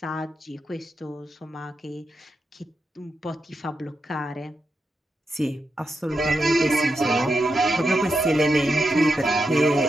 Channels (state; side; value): normal; both; correlation 0.87